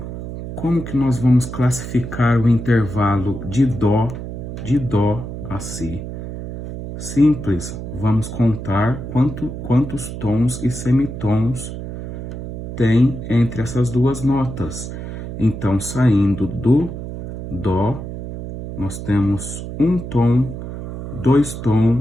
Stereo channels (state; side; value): noise; right; hum, 8 dB below the sound